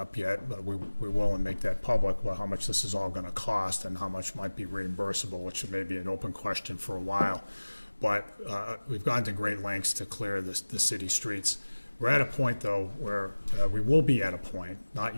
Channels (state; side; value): inverted; both; correlation -1.00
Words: yet, but we will and make that public, well, how much this is all going to cost and how much might be reimbursable, which may be an open question for a while. But we've gone to great lengths to clear the city streets. We're at a point, though, where we will be at a point, not